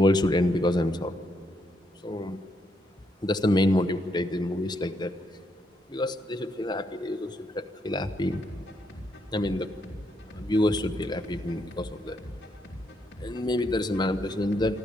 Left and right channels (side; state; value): both; normal; correlation 0.77